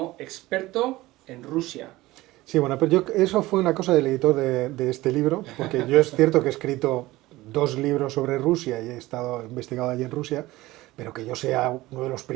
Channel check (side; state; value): left; quieter; 18.4 dB